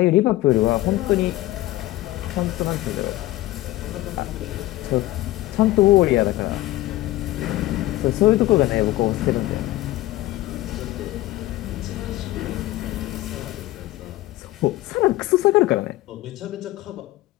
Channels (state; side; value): quieter; right; 16.8 dB